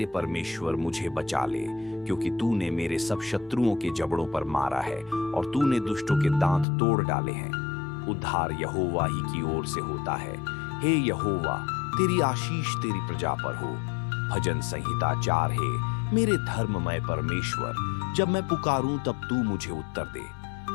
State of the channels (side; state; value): right; drops out; at 6.7 s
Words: परमेश्वर मुझे बचा ले, क्योंकि तूने मेरे सब शत्रुओं के जबड़ों पर मारा है और तूने दुष्टों के दांत तोड़ डाले हैं। उद्धार यहोवा ही की ओर से होता है। हे यहोवा तेरी आशीष तेरी प्रजा पर हो। भजन संहिता 4। हे मेरे धर्ममय परमेश्वर, जब मैं पुकारूं तब तू मुझे उत्तर